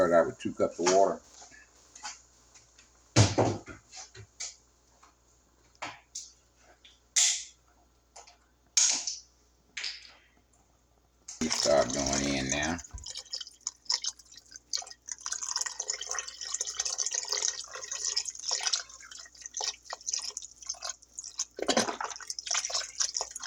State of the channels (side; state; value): both; identical; correlation 1.00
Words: out with 2 cups of water. You start going in now.